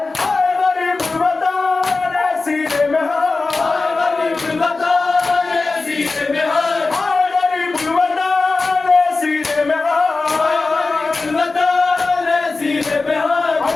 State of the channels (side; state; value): right; quieter; 3.7 dB